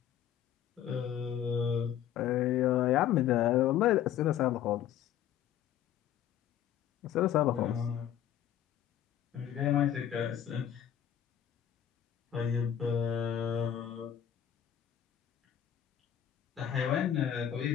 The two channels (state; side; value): quieter; right; 10.2 dB